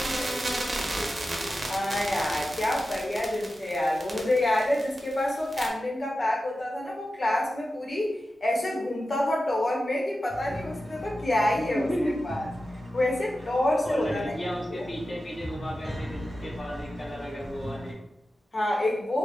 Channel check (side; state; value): both; normal; correlation 0.93